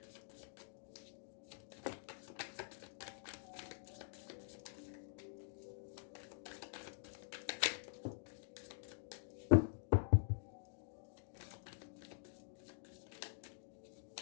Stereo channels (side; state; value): right; silent; digital silence